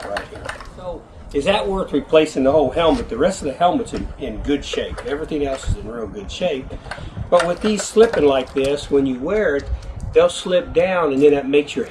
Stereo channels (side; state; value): both; identical; correlation 1.00